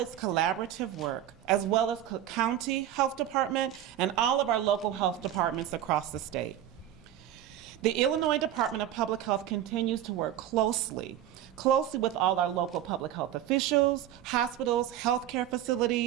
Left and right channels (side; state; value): left; quieter; 11.5 dB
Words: collaborative work, as well as Cook County Health Department and all of our local health departments across the state. The Illinois Department of Public Health continues to work closely with all our local public health officials, hospitals, healthcare